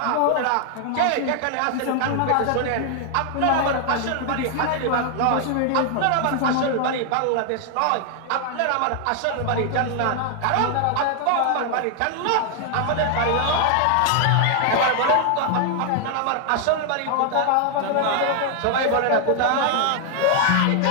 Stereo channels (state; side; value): different; both; correlation 0.00